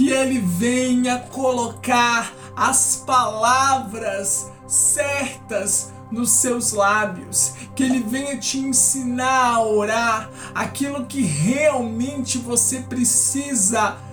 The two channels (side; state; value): both; identical; correlation 1.00